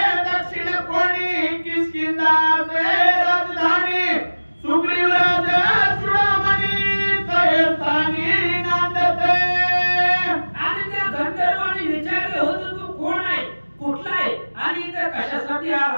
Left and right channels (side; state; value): both; inverted; correlation -1.00